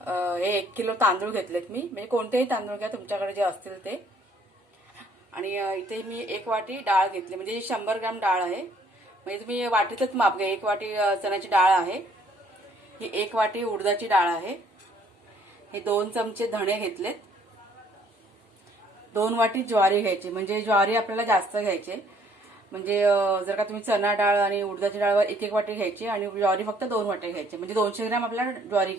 1 किलो तांदूळ घेतलेत मी, म्हणजे कोणतेही तांदूळ घ्या तुमच्याकडे जे असतील ते। आणि इथे मी 1 वाटी डाळ घेतली, म्हणजे 100 ग्रॅम डाळ आहे, म्हणजे तुम्ही वाटीतच माप घ्या। 1 वाटी चण्याची डाळ आहे, ही 1 वाटी उडदाची डाळ आहे, हे 2 चमचे धणे घेतलेत, 2 वाटी ज्वारी घ्यायची, म्हणजे ज्वारी आपल्याला जास्त घ्यायचे। म्हणजे जर का तुम्ही चणा डाळ आणि उडदाची डाळ 1-1 वाटी घ्यायची आणि ज्वारी फक्त 2 वाटी घ्यायची, म्हणजे 200 ग्रॅम आपल्याला ज्वारी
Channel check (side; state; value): both; normal; correlation 0.62